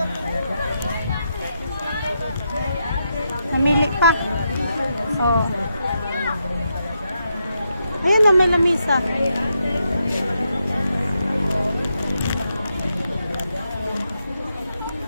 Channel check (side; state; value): both; inverted; correlation -0.83